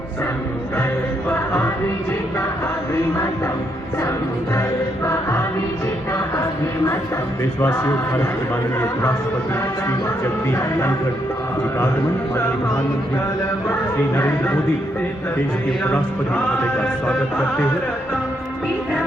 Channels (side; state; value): both; normal; correlation 0.76